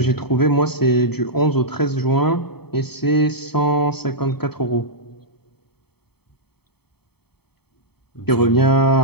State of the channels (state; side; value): late; right; 0.97 ms